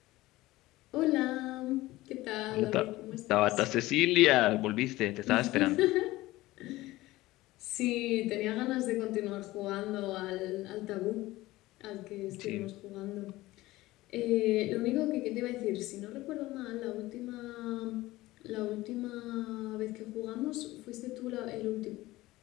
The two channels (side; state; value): right; quieter; 18.1 dB